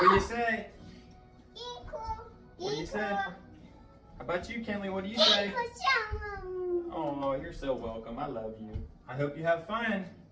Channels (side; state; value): both; identical; correlation 1.00